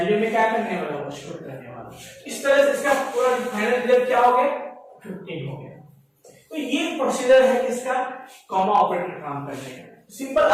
में क्या करने वाला, वो स्टोर करने वाला। इस तरह से इसका पूरा फाइनल रिजल्ट क्या हो गया, 15 हो गया। तो ये प्रोसीजर है किसका, कॉमा ऑपरेटर काम करने का। सिंपल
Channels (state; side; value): identical; both; correlation 1.00